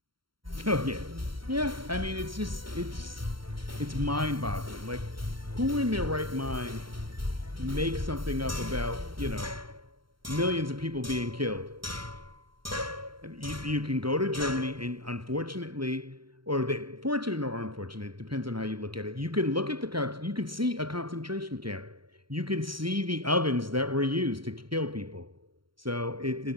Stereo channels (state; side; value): late; left; 0.73 ms